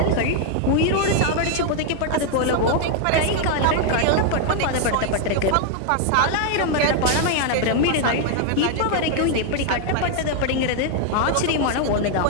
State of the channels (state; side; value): different; both; correlation 0.00